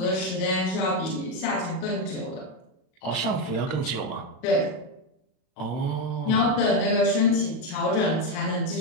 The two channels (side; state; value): right; late; 37 ms